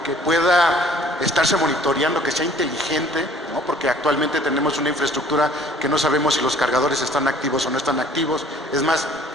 pueda estarse monitoreando, que sea inteligente, ¿no? Porque actualmente tenemos una infraestructura que no sabemos si los cargadores están activos o no están activos. Es más,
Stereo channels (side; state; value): both; normal; correlation 0.54